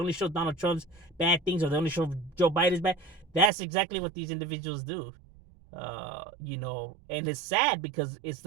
show Donald Trump's bad things, or they only show Joe Biden's bad. That's exactly what these individuals do. And it's sad because it's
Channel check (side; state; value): left; drops out; at 3.5 s